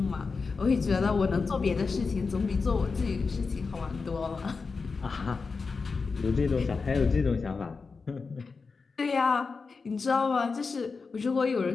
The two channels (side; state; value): right; quieter; 4.6 dB